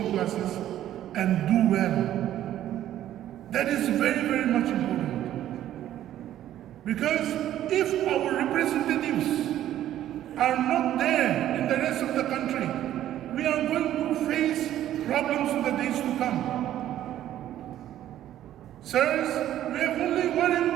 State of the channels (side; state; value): left; quieter; 12.3 dB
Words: classes and do well. That is very, very much important. Because if our representatives are not there in the rest of the country, we are going to face problems in the days to come. Sirs, we have only one